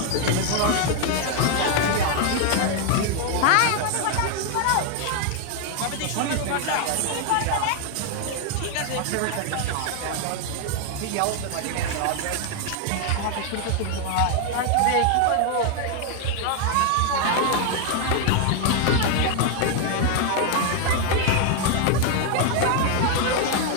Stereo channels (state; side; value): different; both; correlation 0.01